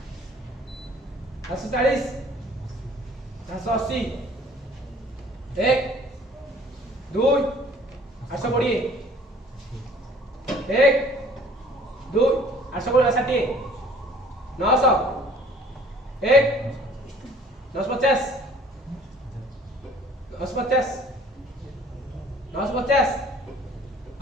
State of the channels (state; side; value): normal; both; correlation 0.53